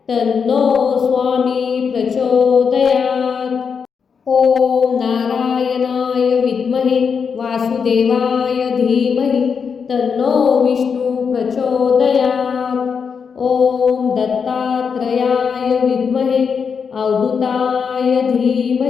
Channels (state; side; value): quieter; right; 6.2 dB